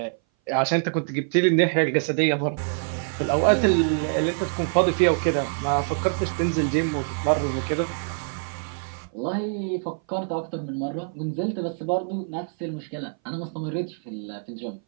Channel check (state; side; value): silent; left; 58 dB below the other